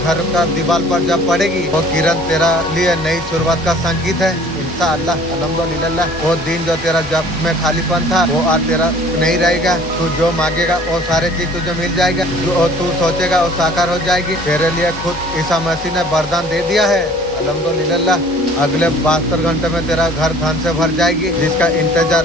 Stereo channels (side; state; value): both; normal; correlation 0.51